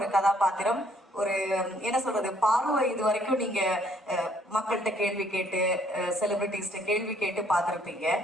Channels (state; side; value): normal; both; correlation 0.65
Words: கதாபாத்திரம், ஒரு என்ன சொல்றது, பார்வை இது வரைக்கும் நீங்க மக்கள்கிட்ட கேள்வி கேட்டு செலிபிரிட்டிஸ்ட கேள்வி கேட்டு பார்த்துருப்பீங்க.